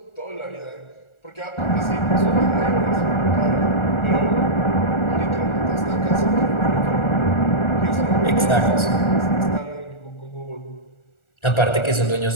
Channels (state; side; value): late; right; 1.4 ms